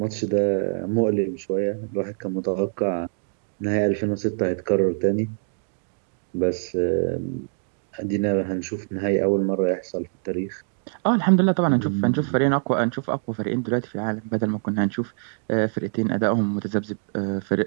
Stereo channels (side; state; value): left; silent; digital silence